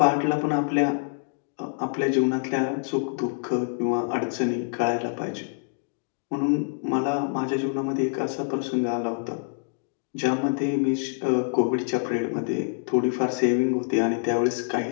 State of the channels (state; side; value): silent; right; digital silence